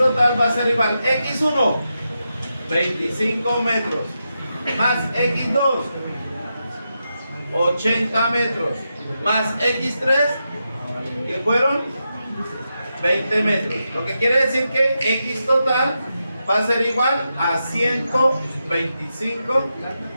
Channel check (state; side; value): inverted; both; correlation -0.87